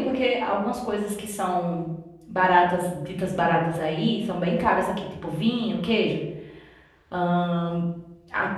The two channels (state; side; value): identical; both; correlation 1.00